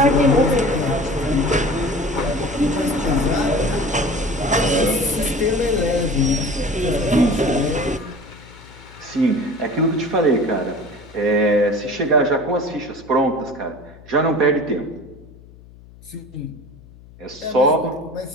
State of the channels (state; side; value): noise; left; hum, 22 dB below the sound